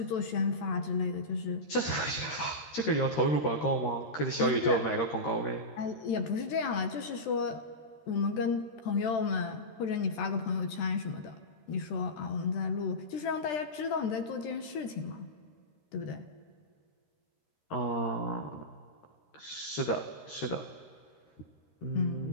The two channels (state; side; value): late; right; 13 ms